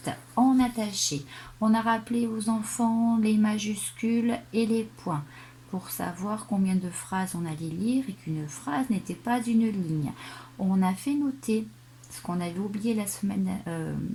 en attaché. On a rappelé aux enfants les majuscules et les points pour savoir combien de phrases on allait lire et qu'une phrase n'était pas une ligne. On a fait noter ce qu'on avait oublié la semaine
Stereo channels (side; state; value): both; identical; correlation 1.00